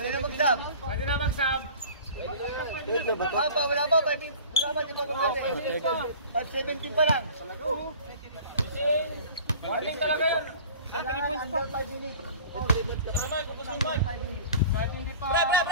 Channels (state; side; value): inverted; both; correlation -0.43